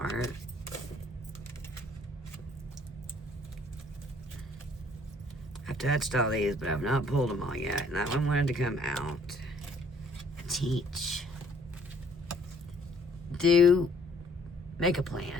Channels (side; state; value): both; normal; correlation 0.61